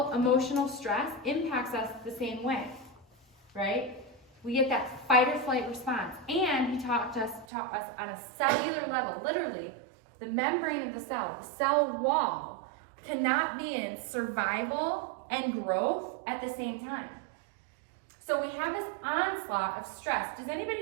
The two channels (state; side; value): drops out; left; at 7.5 s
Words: emotional stress impacts us the same way, right? We get that fight or flight response. And he taught us on a cellular level, literally, the membrane of the cell wall, cannot be in survival and growth at the same time. So we have this onslaught of stress. Does